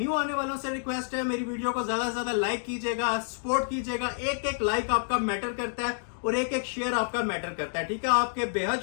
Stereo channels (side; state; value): right; silent; digital silence